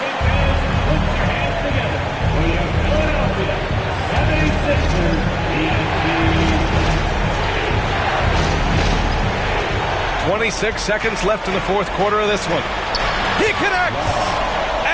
Seconds left in the fourth quarter of this one. He connects!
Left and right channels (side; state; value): both; identical; correlation 1.00